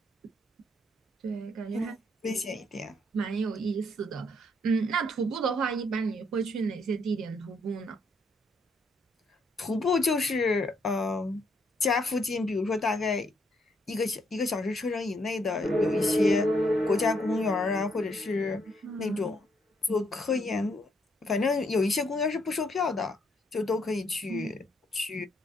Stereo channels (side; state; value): both; normal; correlation 0.72